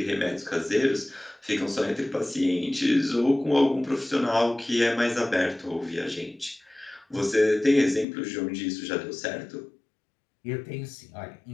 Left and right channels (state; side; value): drops out; right; at 8.1 s